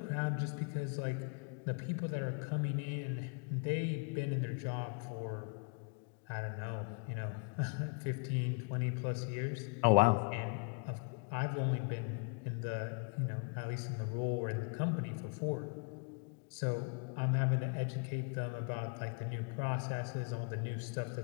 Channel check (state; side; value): quieter; right; 35.1 dB